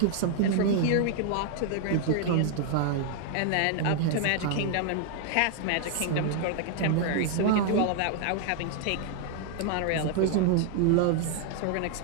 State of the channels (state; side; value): different; both; correlation 0.00